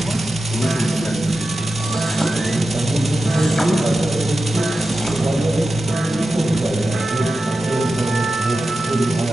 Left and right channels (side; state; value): right; noise; rumble, 25 dB below the sound